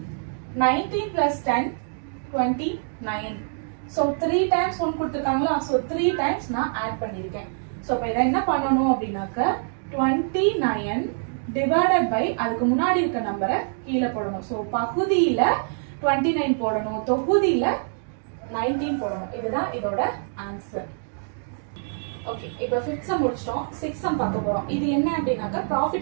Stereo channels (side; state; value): left; silent; digital silence